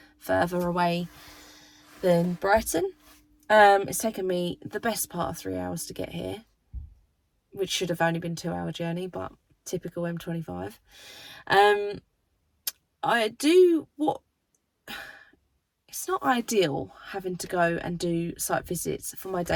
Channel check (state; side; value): identical; both; correlation 1.00